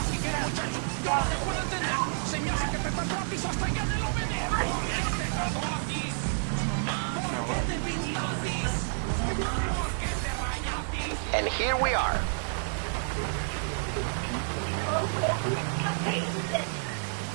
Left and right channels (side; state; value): left; silent; digital silence